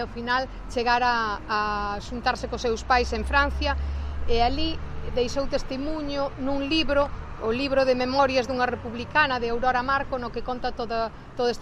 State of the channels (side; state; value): both; identical; correlation 1.00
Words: final chegar a xuntarse cos seus pais en Francia, e ali deixou testimonio nun libro, o libro de memorias dunha republicana de Aurora Marco, no que conta todo